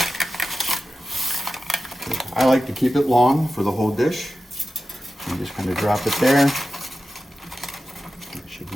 I like to keep it long for the whole dish. You just kind of drop it there. It should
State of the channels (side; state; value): both; normal; correlation 0.93